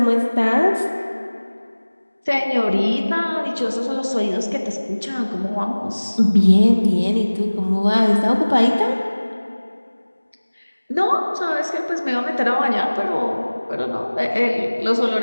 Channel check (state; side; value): inverted; both; correlation -1.00